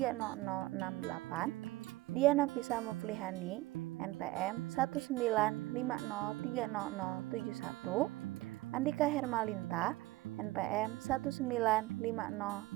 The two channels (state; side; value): quieter; left; 18.8 dB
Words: Diana Fisa Muflihani, NPM 195030071, Andika Hermalinta, NPM